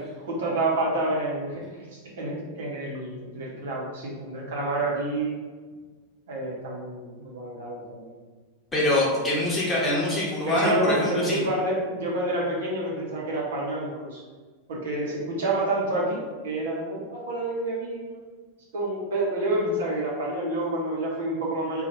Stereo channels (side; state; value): both; normal; correlation -0.02